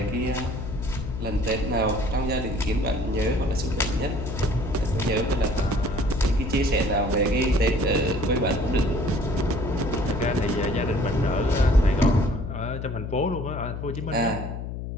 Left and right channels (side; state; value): left; noise; hum, 6 dB below the sound